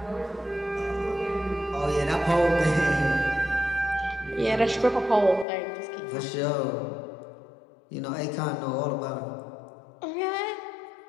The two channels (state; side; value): drops out; right; at 5.5 s